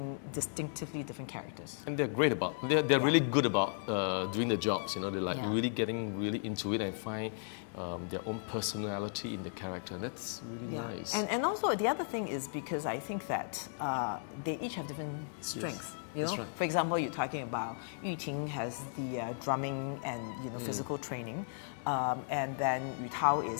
distinctively different characters. And they're great they're really good about doing the jobs, they're like really getting really into it and find their own personality in the character. And that's really nice. And also the other thing is because I think that they each have different strengths. That's right. For example, you're talking about Yu Ting has the drumming and physical training, and then Yu Tao is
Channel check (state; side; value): silent; right; digital silence